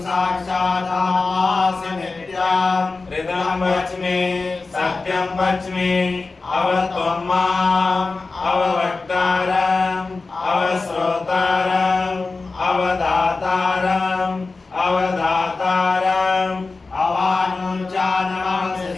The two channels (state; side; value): quieter; right; 3.8 dB